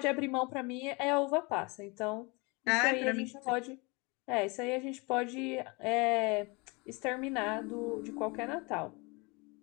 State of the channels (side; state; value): right; quieter; 27.8 dB